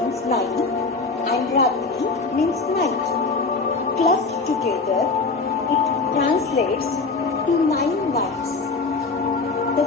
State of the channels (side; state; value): right; quieter; 4.0 dB